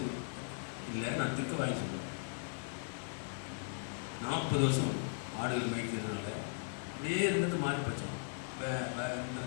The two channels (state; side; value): silent; right; digital silence